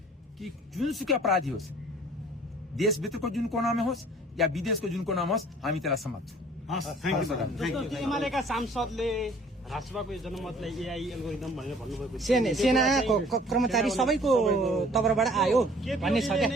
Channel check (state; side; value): normal; both; correlation 0.53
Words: कि जुनसुकै अपराधी होस्, देशभित्रको जुन कोनामा होस् या विदेशको जुन कोनामा होस्, हामी त्यसलाई समात्छौँ। एमालेका सांसदले राष्ट्रसभाको जनमतलाई एआई एल्गोरिदम भनेर भन्नुभएको सेनाको कर्मचारी सबैको तर्फबाट आयो भन्ने छ क्या।